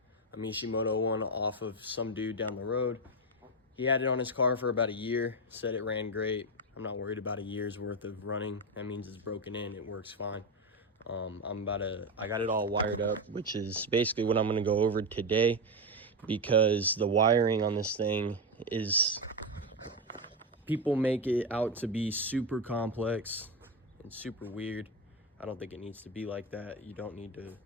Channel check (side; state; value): both; normal; correlation 0.11